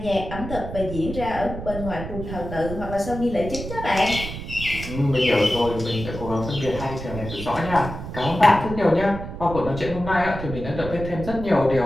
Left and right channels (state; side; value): noise; right; rumble, 8 dB below the sound